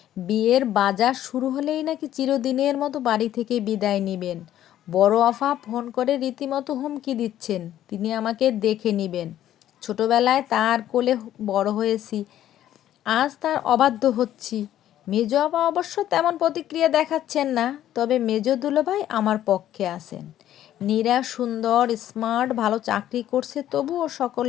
বিয়ের বাজার শুরু হলেই নাকি চিরদিনের মতো বাড়ি থেকে বিদায় নেবেন। বড় আফা ফোন করে রীতিমতো হুমকি দিচ্ছেন, তিনি আমাকে দেখে নেবেন। ছোটবেলায় তার কোলে বড় হয়েছি, আজ তার অবাধ্য হচ্ছি। মেজ আপা অবশ্য তেমন প্রতিক্রিয়া দেখাচ্ছেন না, তবে মেজ দুলাভাই আমার পক্ষে আছেন। নীরা সুন্দর, স্মার্ট, ভালো চাকরি করছে, তবুও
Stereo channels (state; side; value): quieter; right; 12.1 dB